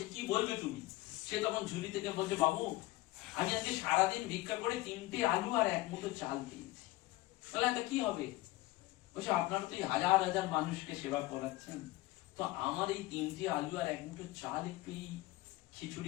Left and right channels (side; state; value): right; quieter; 18.6 dB